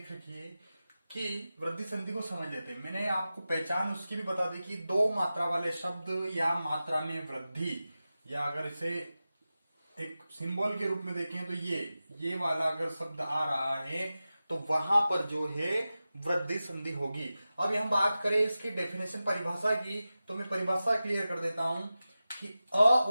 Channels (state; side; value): inverted; both; correlation -0.94